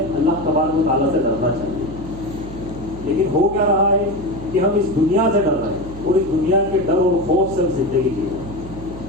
تبارک و تعالیٰ سے ڈرنا چاہیے. لیکن ہو کیا رہا ہے کہ ہم اس دنیا سے ڈر رہے ہیں اور اس دنیا کے ڈر اور خوف سے زندگی کی ہے.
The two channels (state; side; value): noise; right; hum, 13 dB below the sound